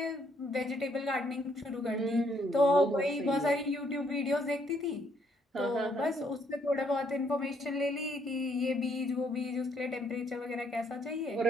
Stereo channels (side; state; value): both; normal; correlation 0.70